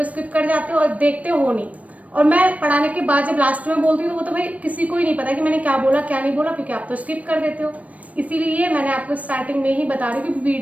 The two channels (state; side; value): late; left; 0.068 ms